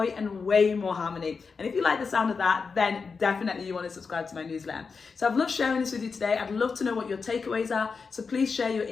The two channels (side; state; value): right; quieter; 5.0 dB